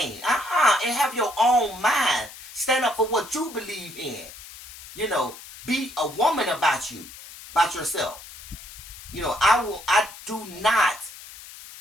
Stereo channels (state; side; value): noise; left; hiss, 16 dB below the sound